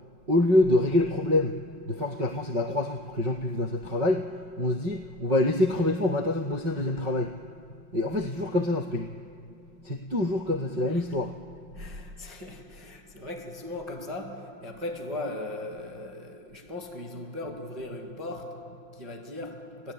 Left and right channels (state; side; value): late; left; 5.6 ms